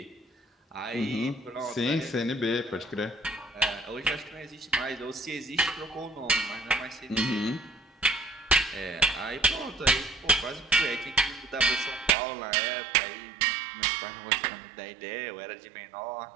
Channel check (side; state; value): left; drops out; at 12.1 s